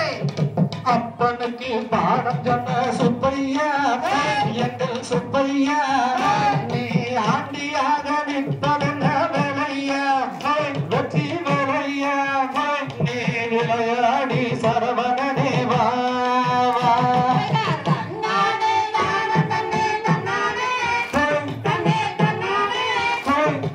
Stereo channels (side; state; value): both; identical; correlation 1.00